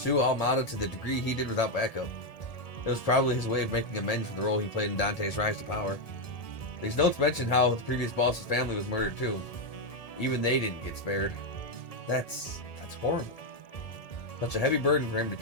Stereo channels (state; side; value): late; right; 1.7 ms